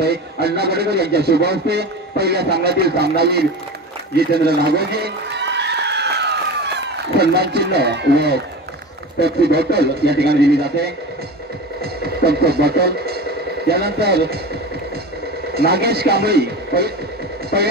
आहे. अण्णा गडेकर यांच्या शुभ हस्ते पहिल्या सामन्यातील सामनावीर जितेंद्र नागोजी सन्मान चिन्ह व पेप्सी बॉटल या ठिकाणी दिली जाते, थम्सअप बॉटल. यानंतर नागेश कांबळी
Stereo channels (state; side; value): normal; both; correlation 0.30